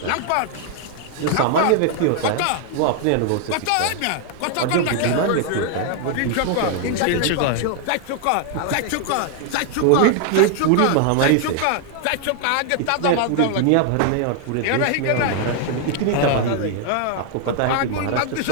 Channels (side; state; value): both; different; correlation 0.00